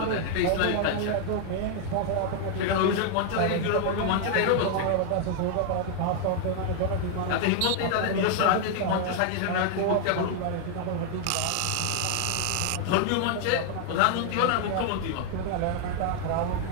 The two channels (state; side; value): different; both; correlation 0.00